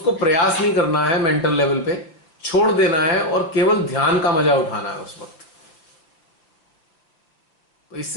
प्रयास नहीं करना है, मेंटल लेवल पे छोड़ देना है और केवल ध्यान का मजा उठाना है उस वक्त। तो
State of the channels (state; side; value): late; right; 6.0 ms